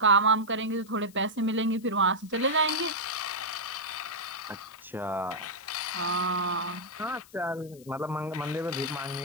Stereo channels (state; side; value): noise; left; hiss, 23 dB below the sound